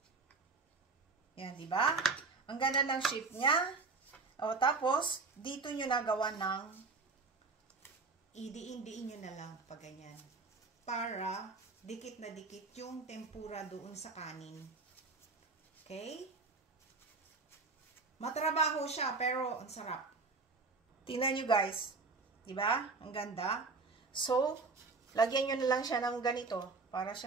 Yan, di ba? Ang ganda ng shape niya. O, tapos, dito nyo nagawa ng idiin-diin nyo na lang pag ganyan. Para dikit na dikit yung tempura doon sa kanin. Okay? Matrabaho siya, pero ang sarap. Tingnan nyo guys. Diba? Ang ganda. So, lagyan nyo na lang siya ng ganito para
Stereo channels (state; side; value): quieter; left; 4.1 dB